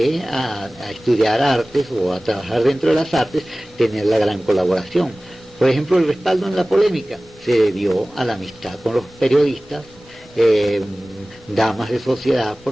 a estudiar artes o a trabajar dentro de las artes, tener la gran colaboración. Por ejemplo, el respaldo en la polémica se debió a la amistad con los periodistas, damas de sociedad,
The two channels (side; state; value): both; normal; correlation 0.98